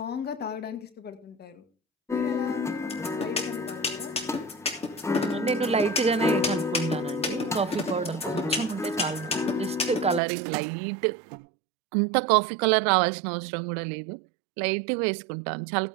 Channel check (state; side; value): drops out; left; at 10.2 s